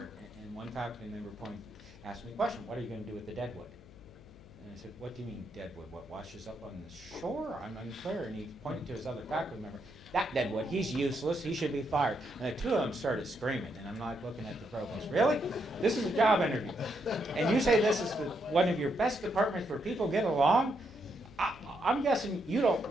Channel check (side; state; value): left; noise; hum, 20 dB below the sound